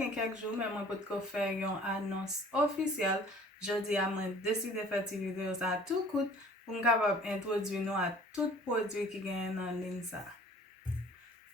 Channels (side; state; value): both; normal; correlation 0.51